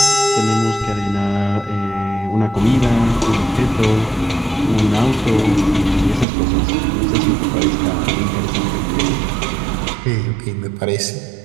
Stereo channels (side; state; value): left; drops out; at 6.2 s